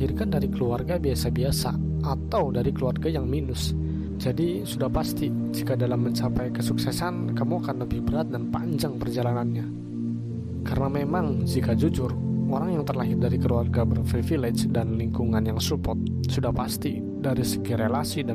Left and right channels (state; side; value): identical; both; correlation 1.00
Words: dari keluarga biasa-biasa atau dari keluarga yang minus. Jadi sudah pasti jika dalam mencapai kesuksesan, kamu akan lebih berat dan panjang perjalanannya. Karena memang jika jujur, orang yang terlahir dari keluarga berprivilege dan lingkungan yang support, sudah pasti dari segi relasi